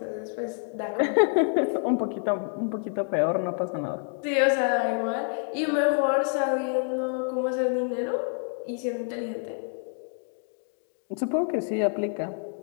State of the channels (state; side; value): silent; right; 60 dB below the other